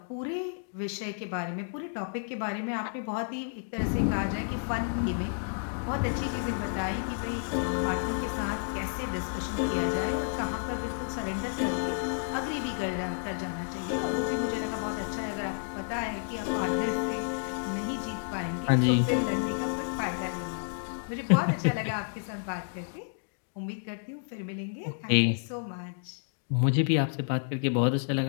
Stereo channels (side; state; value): right; silent; digital silence